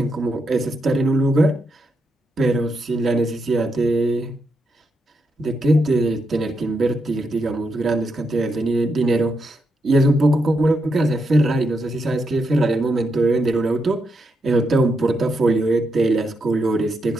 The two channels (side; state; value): both; normal; correlation 0.82